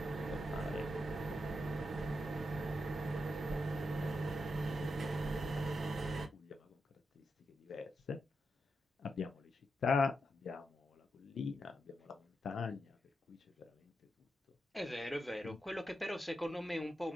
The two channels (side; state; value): both; normal; correlation 0.86